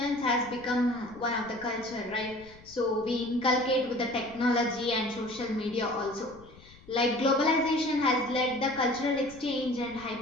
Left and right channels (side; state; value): left; noise; rumble, 23 dB below the sound